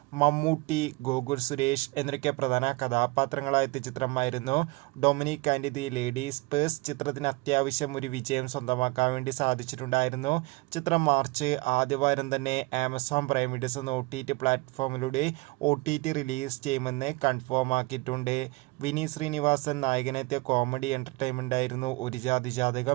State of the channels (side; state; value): left; quieter; 24.5 dB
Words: മമ്മൂട്ടി, ഗോകുൽ സുരേഷ് എന്നൊക്കെ പ്രധാന കഥാപാത്രങ്ങളായെത്തിയ ചിത്രമായിരുന്നു Dominic and the ladies purse. ചിത്രത്തിന് അത്യാവശ്യം ഒരു വിജയം സ്വന്തമാക്കാൻ വേണ്ടി സാധിച്ചിട്ടുണ്ടായിരുന്നു. ചിത്രം മാർച്ച് ആദ്യവാരം തന്നെ ആമസോൺ പ്രൈം വീഡിയോസ് എന്ന OTT പ്ലാറ്റ്ഫോമിലൂടെ OTT റിലീസ് ചെയ്യുമെന്ന് കൺഫേം ആക്കിയിട്ടുണ്ട്. വിനീത് ശ്രീനിവാസൻ നായകനെത്തിയ കോമഡി എൻ്റർടൈൻമെൻ്റ് ആയിരുന്നു ഒരു ജാതി